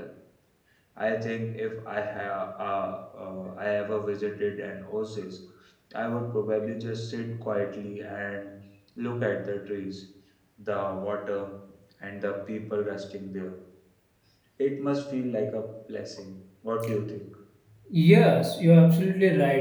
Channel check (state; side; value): identical; both; correlation 1.00